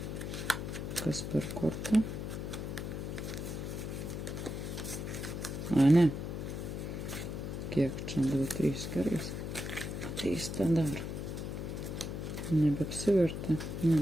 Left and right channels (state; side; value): noise; left; hum, 5 dB below the sound